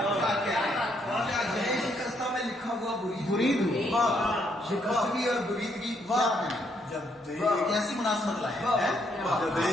شکستہ میں لکھا ہوا برید ہوا. شکستگی اور بریدگی کیسی مناسبت لائے. جب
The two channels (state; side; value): normal; both; correlation 0.73